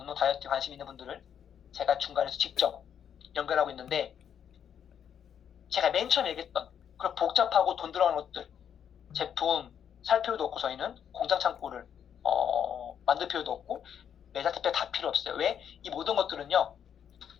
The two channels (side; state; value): right; quieter; 8.6 dB